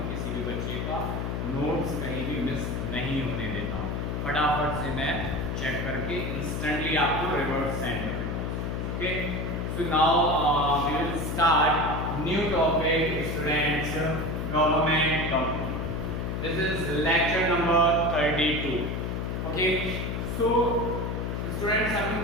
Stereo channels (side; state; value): left; noise; hum, 2 dB below the sound